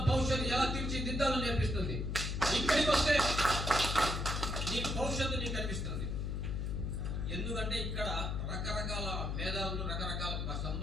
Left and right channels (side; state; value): left; noise; hum, 1 dB below the sound